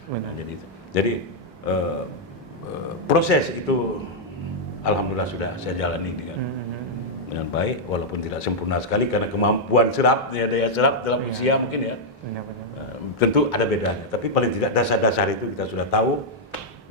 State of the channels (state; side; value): normal; both; correlation -0.05